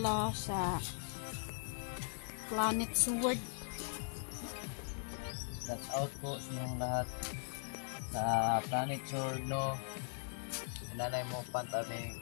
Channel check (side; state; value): right; silent; 51 dB below the other